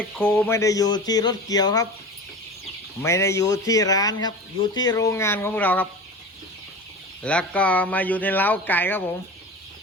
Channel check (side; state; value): both; normal; correlation 0.32